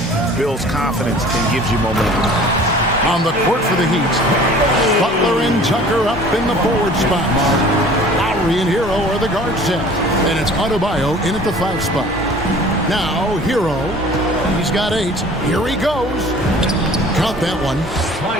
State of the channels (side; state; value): both; normal; correlation 0.47